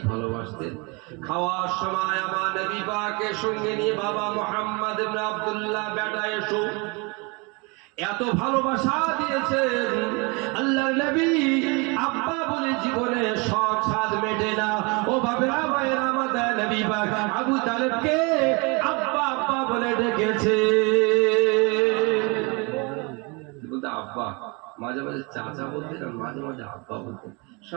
ভালোবাসতেন, খাওয়ার সময় আমার নবী পাকের সঙ্গে নিয়ে বাবা মুহাম্মদ ইবনে আব্দুল্লাহ বেটা এসো, এত ভালোবাসা দিয়েছেন আল্লাহর নবী আব্বা বলে জীবনে শখ সাধ মেটে না। ও বাবেরা ভাইরা, আমাদের নবী পাক আবু তালেবকে আব্বা আব্বা বলে ডেকেছে। বলতে আব্বা, মাঝে মাঝে চাচা বলতেন আর মাঝে মাঝে আব্বা বলতেন।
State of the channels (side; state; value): left; quieter; 29.5 dB